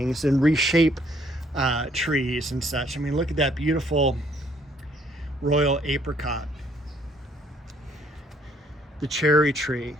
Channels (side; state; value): both; normal; correlation 0.65